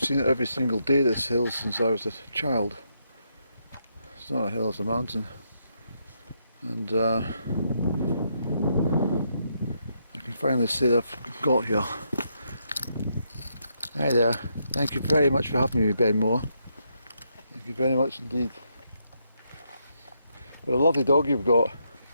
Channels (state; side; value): inverted; both; correlation -0.79